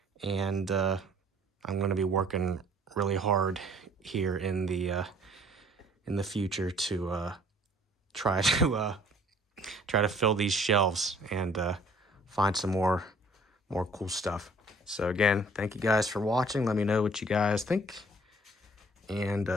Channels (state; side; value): normal; both; correlation 0.56